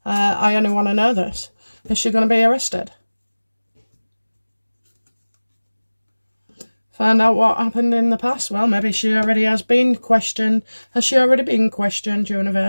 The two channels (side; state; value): both; inverted; correlation -1.00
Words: I only want to know this. Is she going to be arrested? Find out what happened in the past. Well, maybe she already has been questioned. Has she already been questioned,